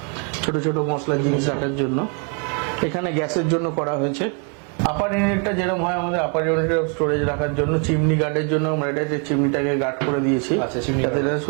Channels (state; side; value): quieter; left; 38.7 dB